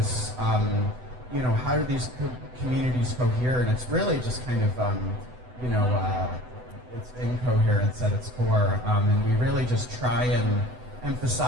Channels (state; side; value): late; left; 8.0 ms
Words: how do these communities cohere, and it's really just kind of it's incoherence at its core, and we really just try and